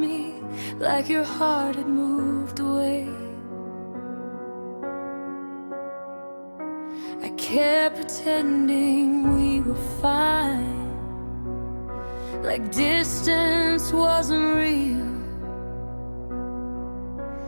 like your heart had moved away. I kept pretending we were fine, like distance wasn't real.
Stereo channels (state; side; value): inverted; both; correlation -1.00